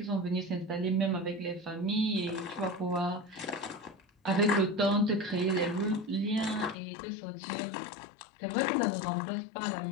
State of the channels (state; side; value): drops out; right; at 6.8 s